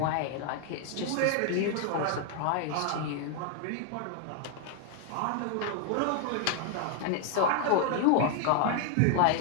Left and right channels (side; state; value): both; different; correlation 0.00